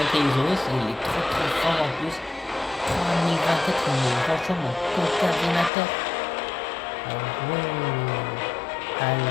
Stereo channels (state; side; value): drops out; right; at 5.7 s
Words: il est très fort en plus. 3024, il est vachement coordinateur.